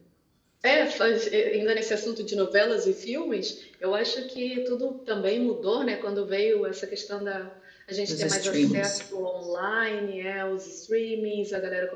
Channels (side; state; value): both; identical; correlation 1.00